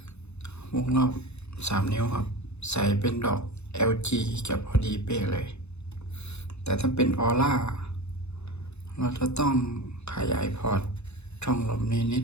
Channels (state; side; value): late; right; 0.81 ms